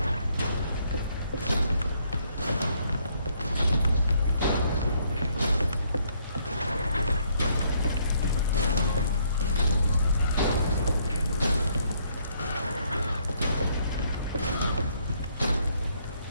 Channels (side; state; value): both; inverted; correlation -0.69